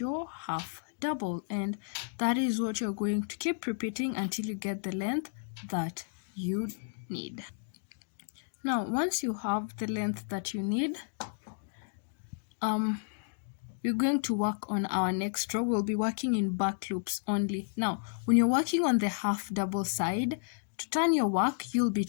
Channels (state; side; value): silent; right; digital silence